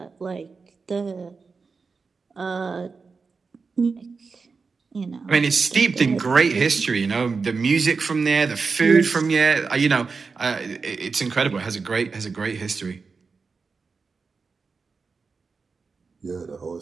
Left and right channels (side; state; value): left; quieter; 4.7 dB